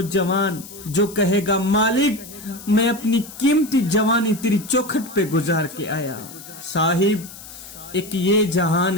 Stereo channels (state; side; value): noise; left; hiss, 16 dB below the sound